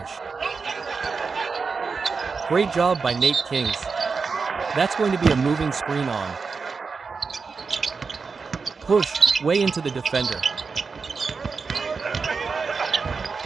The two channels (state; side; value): quieter; left; 4.9 dB